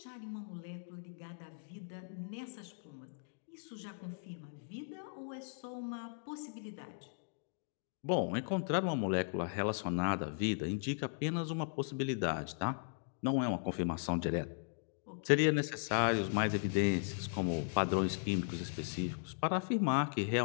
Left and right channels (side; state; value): right; silent; digital silence